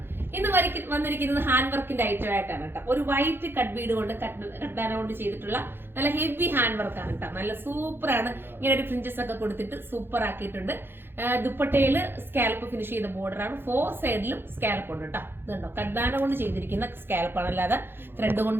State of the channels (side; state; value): left; late; 0.10 ms